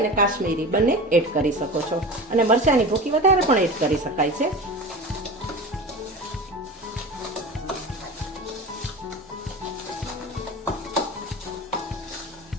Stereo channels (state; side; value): normal; both; correlation 0.31